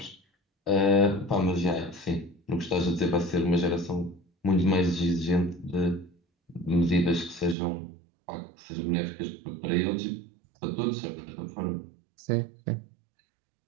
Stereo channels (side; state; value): left; drops out; at 7.6 s